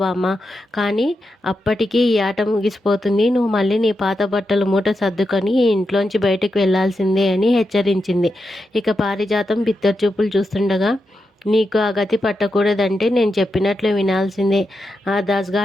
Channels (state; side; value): normal; both; correlation 0.87